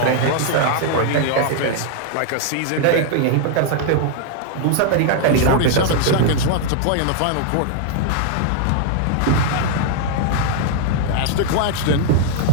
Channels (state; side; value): different; both; correlation 0.00